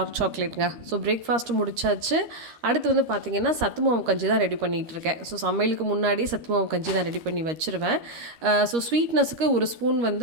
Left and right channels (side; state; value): left; late; 13 ms